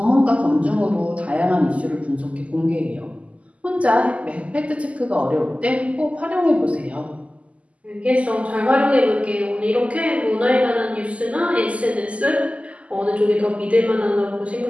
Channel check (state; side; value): late; left; 0.065 ms